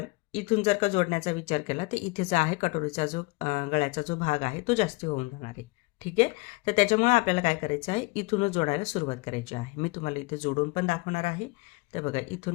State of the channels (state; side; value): quieter; right; 24.9 dB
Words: इथून जर का जोडण्याचा विचार केला तर इथे जो आहे कटोरीचा जो गळ्याचा जो भाग आहे तो जास्त होऊन जाणार आहे. ठीक आहे. तर त्याच्यामुळे आपल्याला काय करायचं आहे, इथूनच जोडायला सुरुवात करायची आहे. मी तुम्हाला इथे जोडून पण दाखवणार आहे. तर बघा,